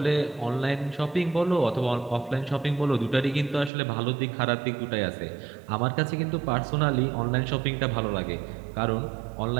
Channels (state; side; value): drops out; left; at 3.7 s